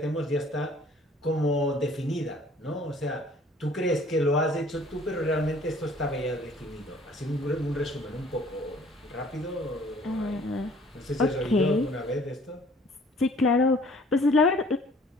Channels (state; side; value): normal; both; correlation 0.55